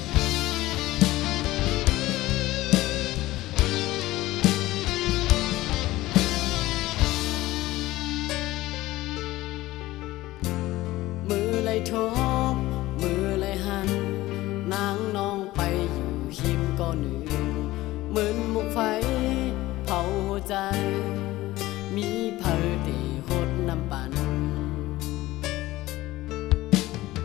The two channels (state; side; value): quieter; right; 17.5 dB